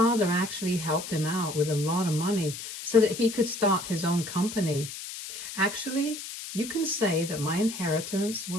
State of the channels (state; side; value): noise; left; hiss, 9 dB below the sound